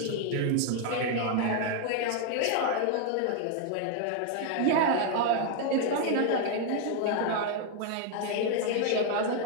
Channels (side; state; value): both; different; correlation 0.00